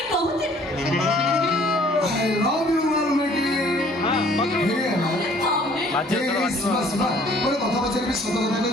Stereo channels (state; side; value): normal; both; correlation 0.57